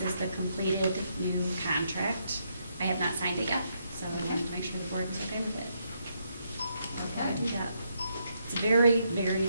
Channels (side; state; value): both; inverted; correlation -0.77